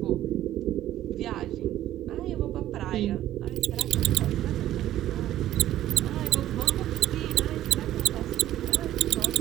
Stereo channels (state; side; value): quieter; left; 13.1 dB